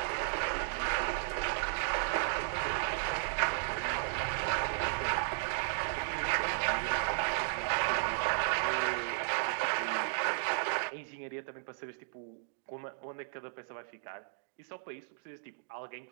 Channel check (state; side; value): silent; left; digital silence